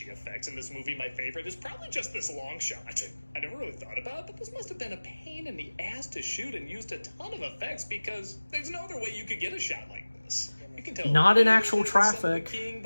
effects in this movie, my favorite is probably just this long shot. I never really thought about it, but this must have been a pain in the ass to shoot and used a ton of effects because there's no other way you could get a shot like this. You can tell Not in it actual was the Son of the traffic. King,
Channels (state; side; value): inverted; both; correlation -1.00